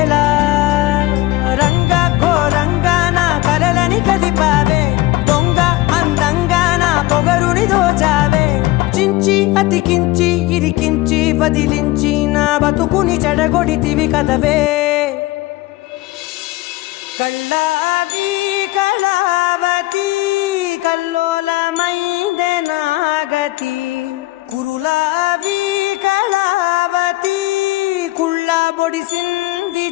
రంగ ఘోరంగా నా కలలని కదిపావే దొంగ అందంగా నా పొగరుని దోచావే చించి అతికించి ఇరికించి వదిలించి నా బతుకుని చెడగొడితివి కదవే కళ్ళావి కళావతి కల్లోలమైందే నాగతి కురులావి కళావతి కుళ్ళ బొడిసింది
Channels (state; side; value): quieter; right; 19.4 dB